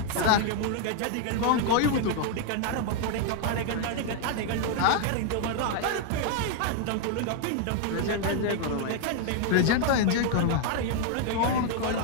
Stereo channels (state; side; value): different; both; correlation 0.00